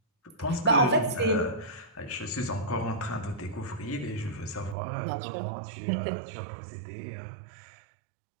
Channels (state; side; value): drops out; left; at 4.8 s